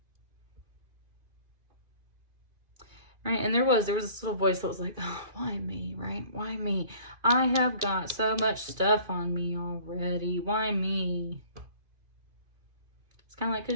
Right? And there was this little voice that was like, oh, why me, right? Why me? I have got so much stuff on me already. Why me? It's kind of like,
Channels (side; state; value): left; late; 2.5 ms